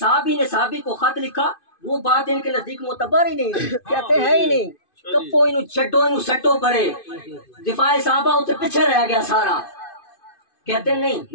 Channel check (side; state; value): right; late; 2.5 ms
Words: نے صحابی کو خط لکھا، وہ بات ان کے نزدیک معتبر ہی نہیں، کہتے ہیں ہی نہیں، کپو انہوں چھٹو انہوں سٹو پڑے، دفاع صحابہ اسے پیچھے رہ گیا سارا، کہتے